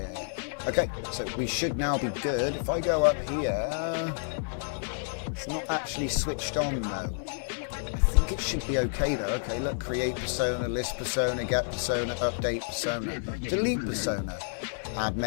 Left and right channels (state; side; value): silent; right; digital silence